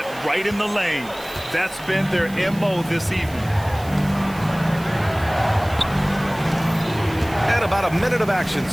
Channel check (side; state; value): right; noise; hiss, 19 dB below the sound